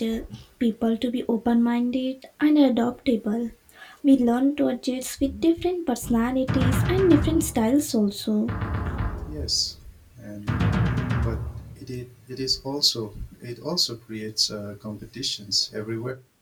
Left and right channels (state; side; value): identical; both; correlation 1.00